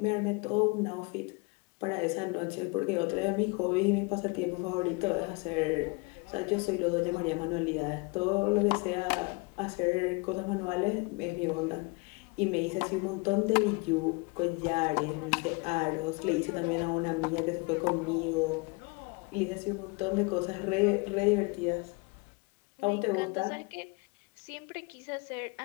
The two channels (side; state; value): right; quieter; 29.0 dB